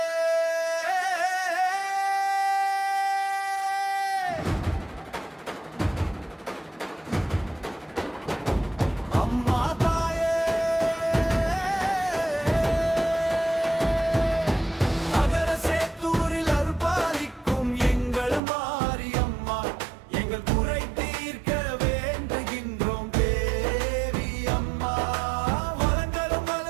அம்மா தாயே அகர சேத்தூரில் அருள்பாலிக்கும் எங்கள் மாரியம்மா எங்கள் குறை தீர்க்க வேண்டுகின்றோம் தேவி அம்மா வளங்களும்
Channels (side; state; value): left; drops out; at 18.4 s